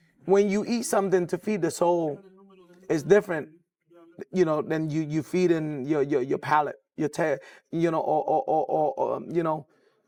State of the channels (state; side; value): identical; both; correlation 1.00